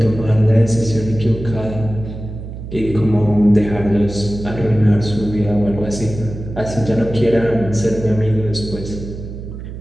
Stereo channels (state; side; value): noise; right; hum, 10 dB below the sound